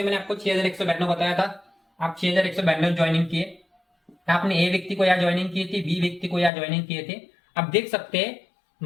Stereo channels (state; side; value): drops out; right; at 6.5 s